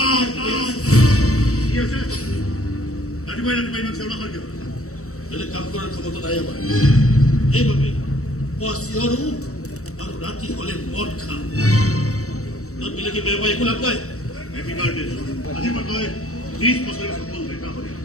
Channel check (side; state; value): right; late; 0.64 ms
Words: বেলেগ কাম কৰাৰ ক্ষমতা নাই আমাৰ সেইবাবে পুৱা চিঞৰো আৰু ৰাতি হলে মদ খাওঁ বেলেগে বেয়া পাই একো লাভ নাই আজি মই 30 বছৰৰ সফল দেখা হয়